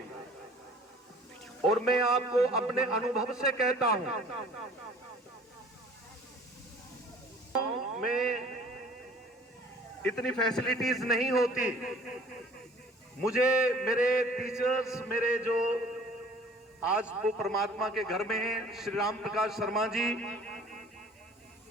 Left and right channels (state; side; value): normal; both; correlation 0.51